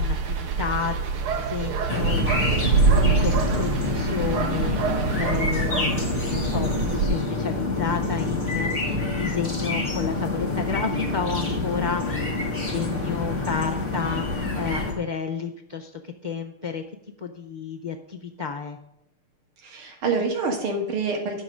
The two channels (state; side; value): late; left; 6.6 ms